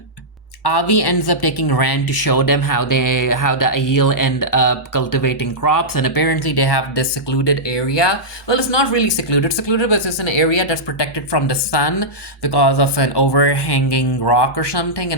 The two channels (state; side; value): normal; both; correlation -0.11